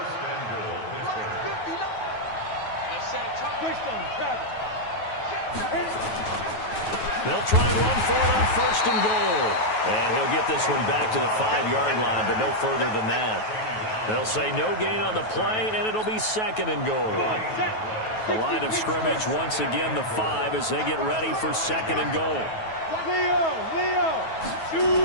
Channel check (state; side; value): late; right; 9.3 ms